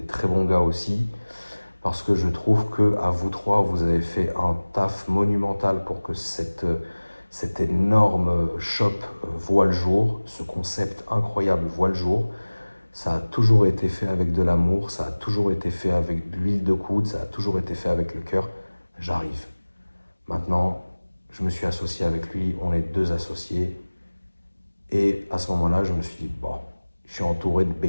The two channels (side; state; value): both; inverted; correlation -1.00